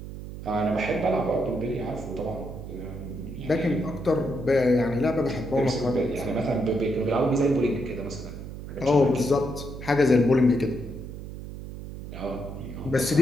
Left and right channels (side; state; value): right; noise; hum, 10 dB below the sound